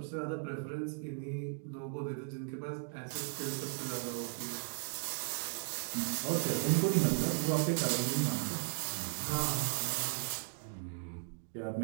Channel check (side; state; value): left; silent; 53 dB below the other